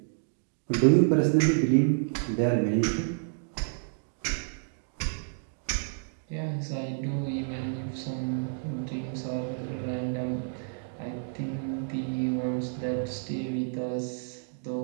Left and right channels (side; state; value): left; silent; digital silence